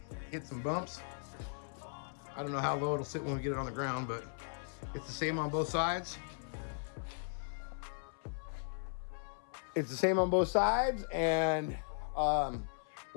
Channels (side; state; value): right; silent; 53 dB below the other